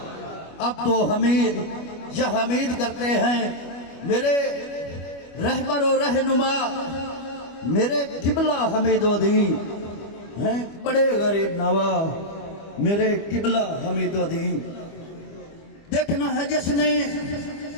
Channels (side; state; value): right; late; 25 ms